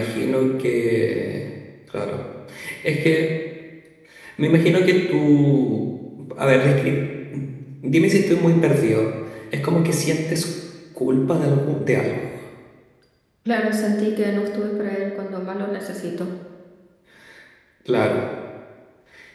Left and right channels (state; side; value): identical; both; correlation 1.00